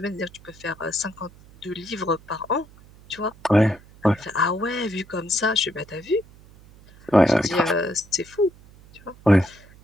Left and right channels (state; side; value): noise; right; hum, 24 dB below the sound